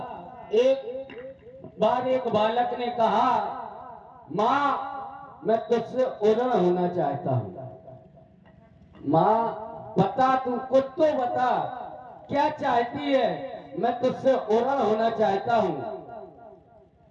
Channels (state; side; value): identical; both; correlation 1.00